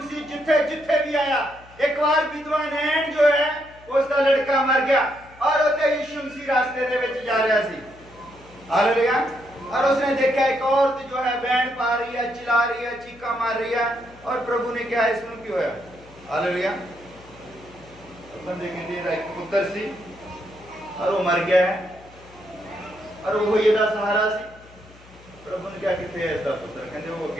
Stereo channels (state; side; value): noise; left; hum, 24 dB below the sound